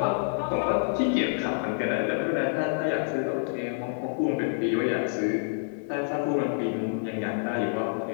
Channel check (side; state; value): right; silent; 58 dB below the other